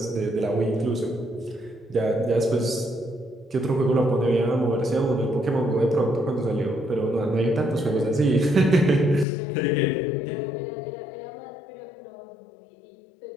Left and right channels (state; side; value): drops out; right; at 9.2 s